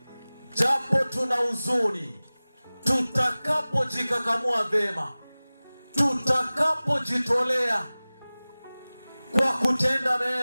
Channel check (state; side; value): inverted; both; correlation -0.99